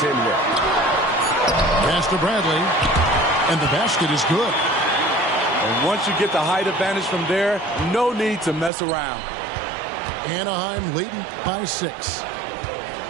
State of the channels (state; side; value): drops out; left; at 8.7 s